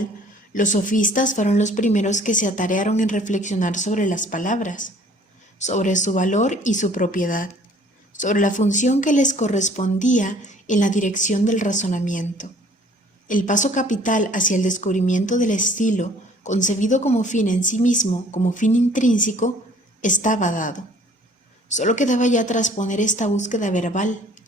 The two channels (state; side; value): normal; both; correlation 0.55